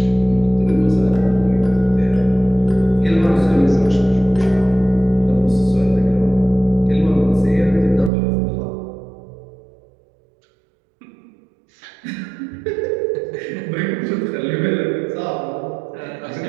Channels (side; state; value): left; drops out; at 8.1 s